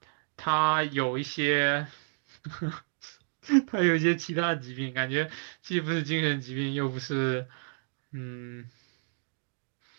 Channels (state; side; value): silent; left; digital silence